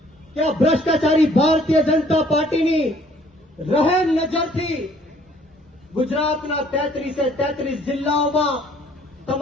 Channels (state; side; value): normal; both; correlation 0.59